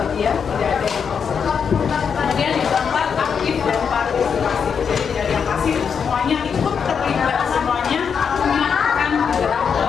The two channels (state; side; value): quieter; right; 6.7 dB